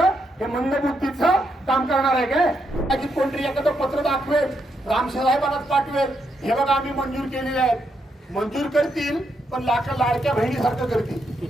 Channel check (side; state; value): both; normal; correlation 0.79